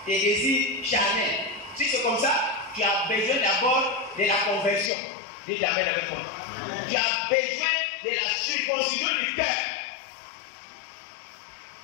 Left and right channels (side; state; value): right; drops out; at 4.9 s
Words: tes désirs charnels. Si c'est comme ça, tu as besoin d'abord de la conversion. Dis Amen avec moi. Tu as besoin de la circoncision du cœur.